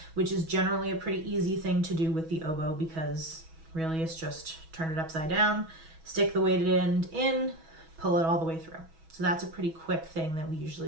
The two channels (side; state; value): left; late; 6.2 ms